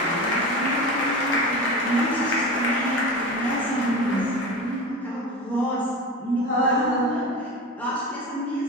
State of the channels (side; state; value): both; normal; correlation 0.28